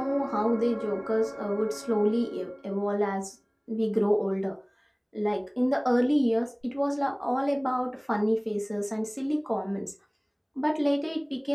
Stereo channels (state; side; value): identical; both; correlation 1.00